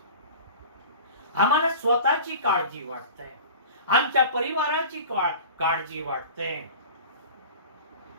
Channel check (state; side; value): inverted; both; correlation -0.38